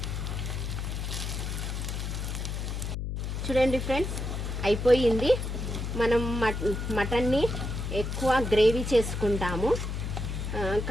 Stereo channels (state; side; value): noise; left; hum, 3 dB below the sound